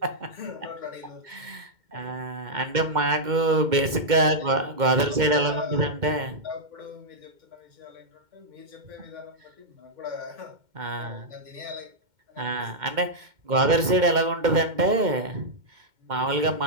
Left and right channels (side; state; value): left; late; 2.1 ms